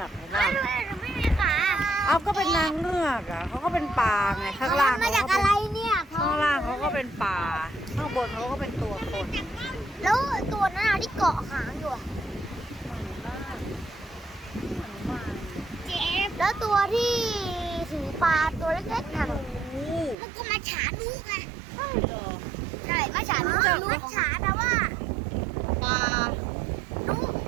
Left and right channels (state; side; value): drops out; left; at 20.2 s